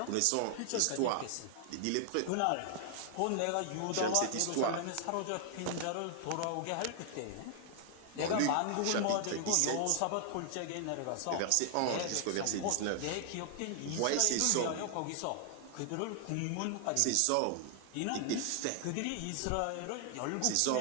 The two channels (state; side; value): different; both; correlation 0.00